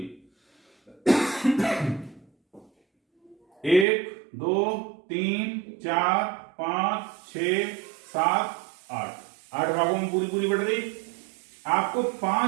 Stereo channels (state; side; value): drops out; left; at 3.9 s